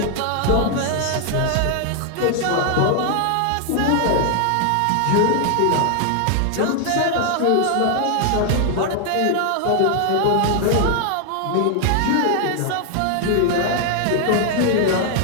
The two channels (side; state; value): both; different; correlation 0.00